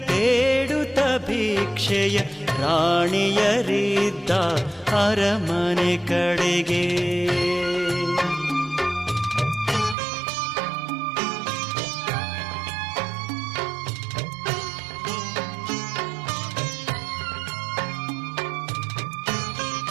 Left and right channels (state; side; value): drops out; left; at 10.0 s